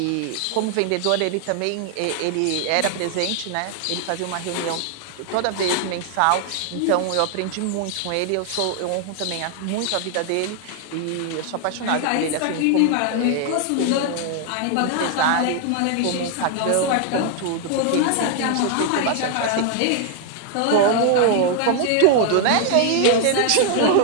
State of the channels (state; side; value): different; both; correlation 0.00